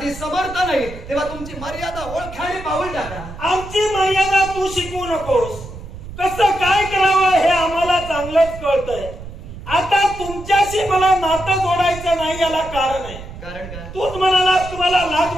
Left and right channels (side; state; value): right; noise; rumble, 13 dB below the sound